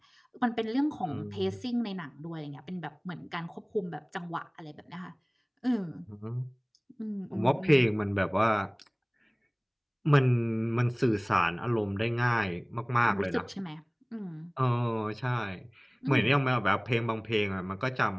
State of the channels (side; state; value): both; identical; correlation 1.00